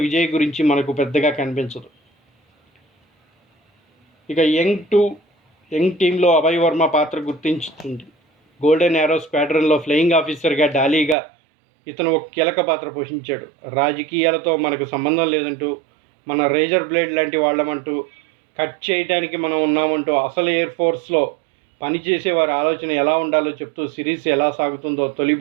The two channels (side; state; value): left; drops out; at 11.2 s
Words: విజయ్ గురించి మనకు పెద్దగా కనిపించదు. ఇక యంగ్ టీంలో అభయ్ వర్మ పాత్ర గుర్తించుతుంది. గోల్డెన్ యారో స్క్వాడ్రన్లో ఫ్లయింగ్ ఆఫీసర్గా డాలీగా ఇతను ఒక కీలక పాత్ర పోషించాడు. రాజకీయాలతో మనకు సంబంధం లేదంటూ, మన రేజర్ బ్లేడ్ లాంటి వాళ్ళమంటూ, కట్ చేయడానికి మనం ఉన్నామంటూ అసలు ఎయిర్ ఫోర్స్లో పనిచేసే వారి ఆలోచన ఎలా ఉండాలో చెప్తూ సిరీస్ ఎలా సాగుతుందో తొలి